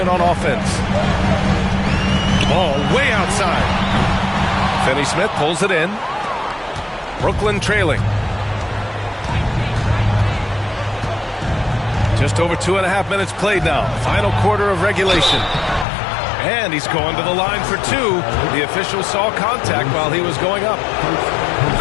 on offense. Ball way outside. Finney-Smith pulls it in. Brooklyn trailing. Just over 2.5 minutes played now. Final quarter of regulation. And he's going to the line for 2. The official saw contact while he was going up.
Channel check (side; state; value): right; drops out; at 15.9 s